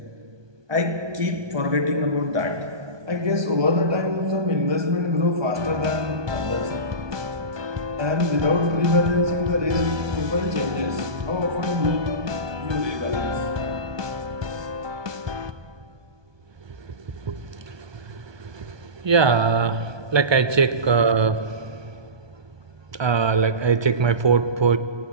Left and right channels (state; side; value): late; left; 1.2 ms